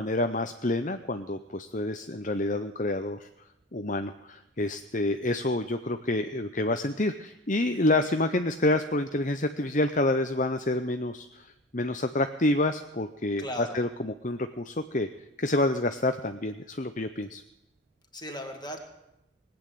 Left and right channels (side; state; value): both; normal; correlation 0.33